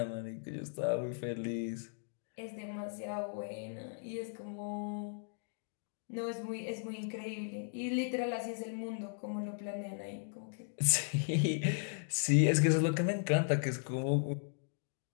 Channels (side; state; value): right; silent; digital silence